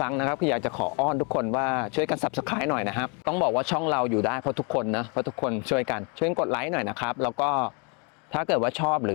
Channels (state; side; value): quieter; right; 35.0 dB